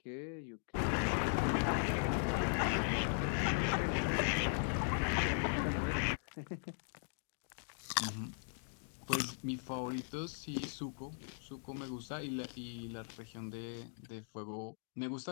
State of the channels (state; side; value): silent; right; digital silence